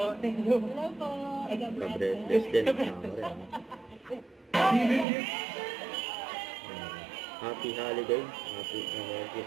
Thank you. Hello po. Ka-breathless din, kasama rin. Happy holiday, happy Merry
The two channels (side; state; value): left; drops out; at 5.1 s